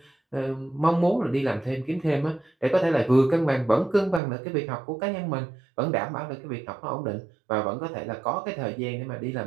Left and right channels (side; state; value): left; drops out; at 4.2 s